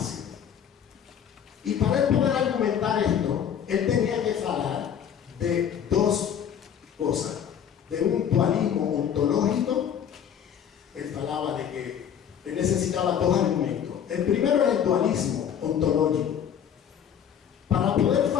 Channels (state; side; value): quieter; right; 8.7 dB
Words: Y para él poder argumentar esto, él tenía que hablar de dos cosas. De un dualismo ontológico. Él hablaba de que él necesitaba dos argumentos. El primero es el dualismo ontológico. Para poder